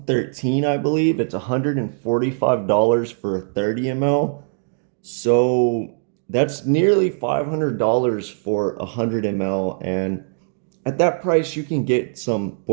I believe. It's $145 for a 30 ml. So that's nearly $500 for a 100 ml. And at that price, you can get some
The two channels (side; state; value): left; silent; digital silence